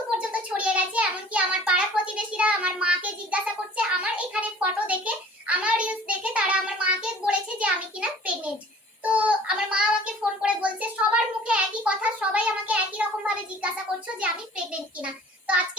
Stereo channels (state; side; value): normal; both; correlation 0.49